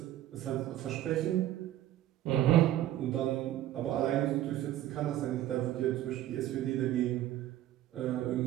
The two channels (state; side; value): quieter; left; 13.3 dB